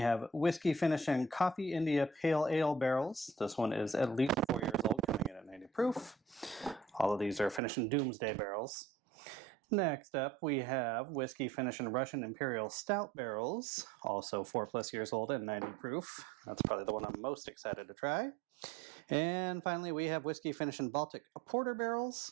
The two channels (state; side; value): drops out; left; at 7.6 s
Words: whiskey finish in Coffee India Pale Ale barrels. This one is at least 4 years old, coming in at 90 proof. All of these are finished in Doomsday barrels. Next up, we have whiskey finish in Russian Imperial Stout barrels, also 4+ years old and 90 proof. That's probably the one I'm most excited to try. And finally, we have whiskey finish in Baltic Porter barrels,